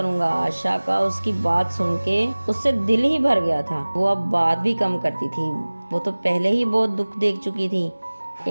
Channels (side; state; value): both; inverted; correlation -1.00